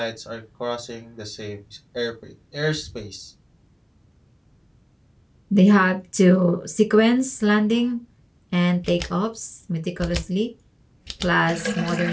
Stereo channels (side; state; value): both; identical; correlation 1.00